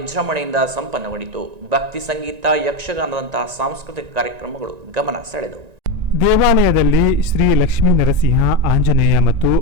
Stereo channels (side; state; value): left; late; 1.9 ms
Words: ಸಂಪನ್ನಗೊಂಡಿತು. ಭಕ್ತಿ ಸಂಗೀತ, ಯಕ್ಷಗಾನದಂತಹ ಸಾಂಸ್ಕೃತಿಕ ಕಾರ್ಯಕ್ರಮಗಳು ಗಮನ ಸೆಳೆದವು. ದೇವಾಲಯದಲ್ಲಿ ಶ್ರೀ ಲಕ್ಷ್ಮೀ ನರಸಿಂಹ, ಆಂಜನೇಯ ಮತ್ತು